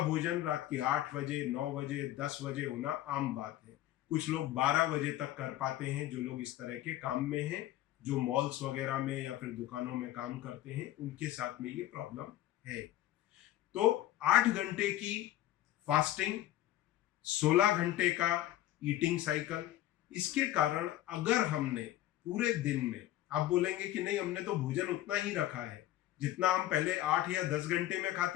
भोजन रात के 8 बजे, 9 बजे, 10 बजे होना आम बात है। कुछ लोग 12 बजे तक कर पाते हैं, जो लोग इस तरह के काम में हैं, जो मॉल्स वगैरह में या फिर दुकानों में काम करते हैं, उनके साथ में ये प्रॉब्लम है। तो 8 घंटे की फास्टिंग, 16 घंटे का ईटिंग साइकिल, इसके कारण अगर हमने पूरे दिन में। आप बोलेंगे कि नहीं, हमने तो भोजन उतना ही रखा है जितना हम पहले 8 या 10 घंटे में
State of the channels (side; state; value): right; quieter; 14.2 dB